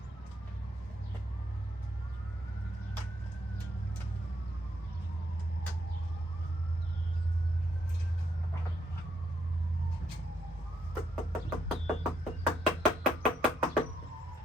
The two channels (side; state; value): both; normal; correlation 0.75